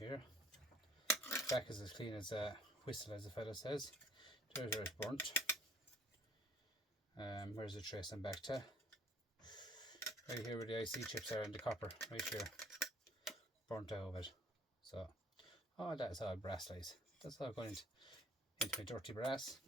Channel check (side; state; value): both; normal; correlation 0.57